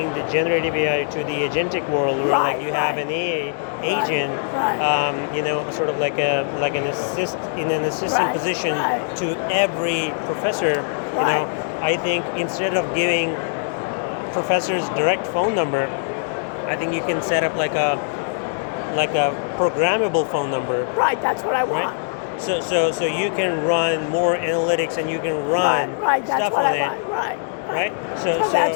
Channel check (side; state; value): right; silent; digital silence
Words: the generative AI to the agentic world, where like you have an AI agent, sort of like an assistant position to every professor. I think instead of giving professors direct phone number, I think you can set up like a programmable phone number. Right, that's what I want. Right? So you can run more analytics and you can run stuff on it. Right. So